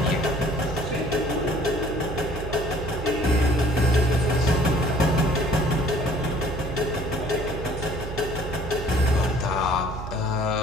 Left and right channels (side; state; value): right; noise; hum, 8 dB below the sound